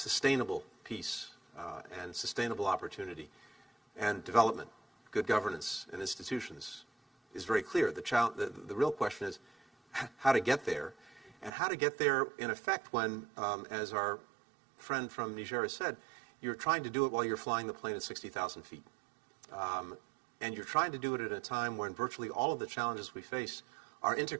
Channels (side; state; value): left; drops out; at 11.5 s